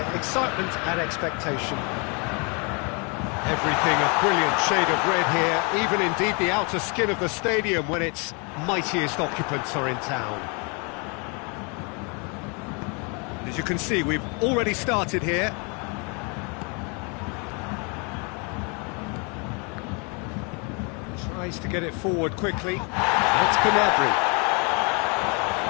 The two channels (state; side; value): quieter; right; 33.2 dB